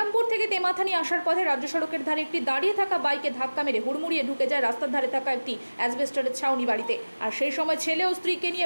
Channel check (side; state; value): both; inverted; correlation -1.00